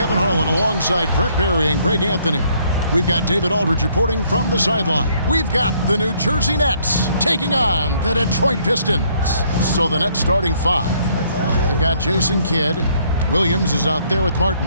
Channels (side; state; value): both; inverted; correlation -0.66